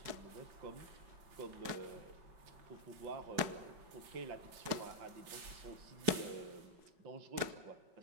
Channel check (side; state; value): left; late; 5.3 ms